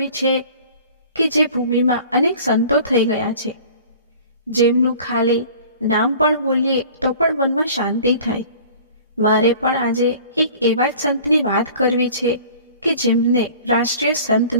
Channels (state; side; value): inverted; both; correlation -0.46